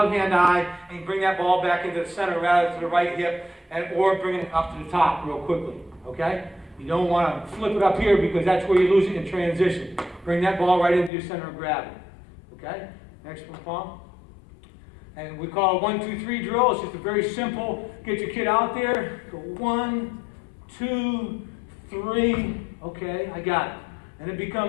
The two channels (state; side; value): drops out; right; at 11.1 s